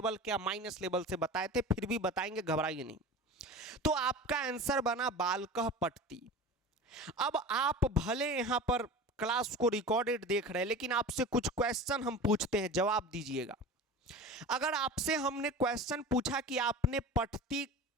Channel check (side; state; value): both; normal; correlation 0.34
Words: क्या माइनस लेवल से बताए थे, फिर भी बताएंगे, घबराइए नहीं। तो आपका आंसर बना बालकः पठति। अब आप भले यहां पर क्लास को रिकॉर्डेड देख रहे हैं, लेकिन आपसे कुछ क्वेश्चन हम पूछते हैं, जवाब दीजिएगा। अगर आपसे हमने क्वेश्चन पूछा कि आपने पठति